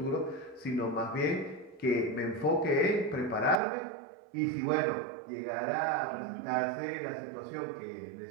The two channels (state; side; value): drops out; left; at 3.6 s